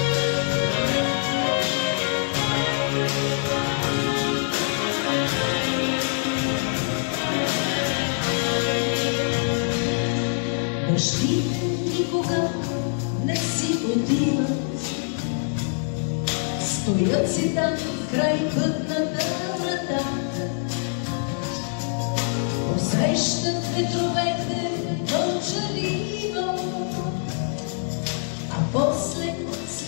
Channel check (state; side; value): silent; right; 62 dB below the other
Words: никога не си отиват, стоят си там край пътната врата, посрещат ветровете мълчаливо, а после